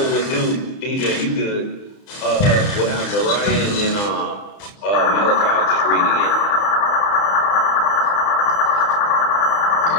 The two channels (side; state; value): right; late; 30 ms